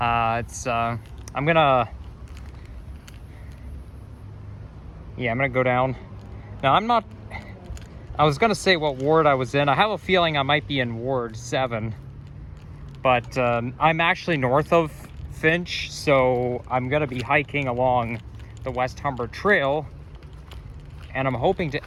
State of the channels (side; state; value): both; identical; correlation 1.00